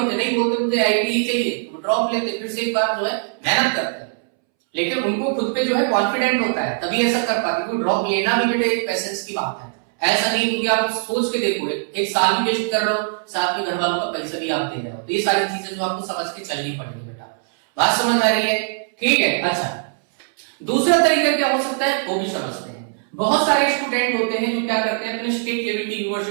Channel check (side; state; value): left; silent; 65 dB below the other